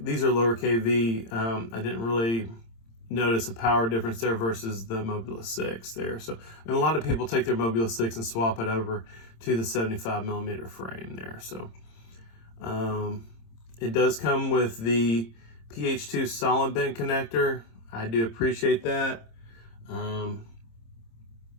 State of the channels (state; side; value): late; right; 26 ms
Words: are lower kV, I didn't really notice a power difference there versus the Moblite6 there. So, and a lot of people take their Moblite6 and swap it over to the 75mm frame there. So it does come with the PH2 solid bent connector. I do appreciate that